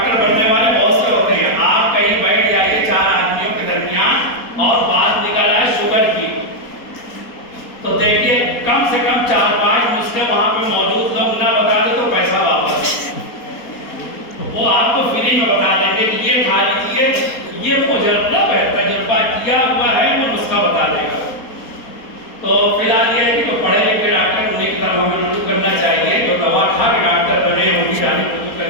بننے والے بہت سے ہوتے ہیں۔ آپ کہیں بیٹھ جائیے 4 آدمیوں کے درمیان اور بات نکل آئے شوگر کی، تو دیکھیے کم سے کم 4-5 نسخے وہاں پہ موجود لوگ نہ بتا دے تو پیسہ واپس۔ وہ آپ کو فری میں بتا دیں گے کہ یہ کھا لیجیے، یہ مجرب ہے، تجربہ کیا ہوا ہے، وہ نسخہ بتا دے گا۔ تو فی الحال یہ ہے کہ تو پڑھے لکھے ڈاکٹر انہیں کی طرف ہمیں رجوع کرنا چاہیے، جو دوا کھا کے ڈاکٹر بنے ان کی جانب رجوع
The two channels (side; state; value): right; late; 4.3 ms